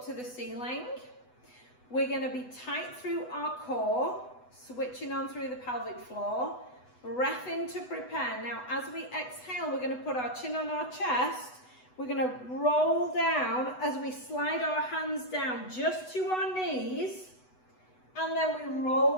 to the ceiling. We're going to be tight through our core, switching on through the pelvic floor. Breath in to prepare. Now, as we exhale, we're going to put our chin on our chest. We're going to roll down as we slide our hands down just to our knees. And then we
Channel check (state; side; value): late; right; 8.0 ms